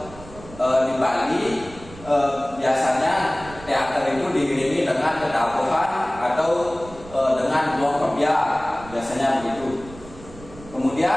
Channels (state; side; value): noise; right; rumble, 18 dB below the sound